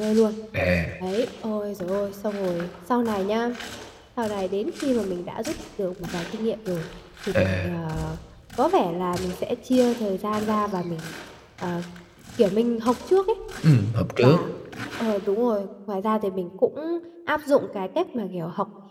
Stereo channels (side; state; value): both; identical; correlation 1.00